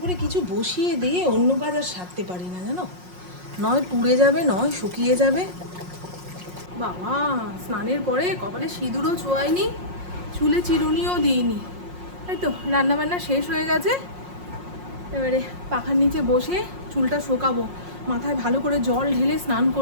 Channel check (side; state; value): left; late; 5.5 ms